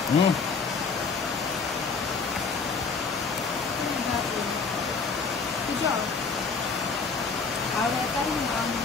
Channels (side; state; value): right; quieter; 4.9 dB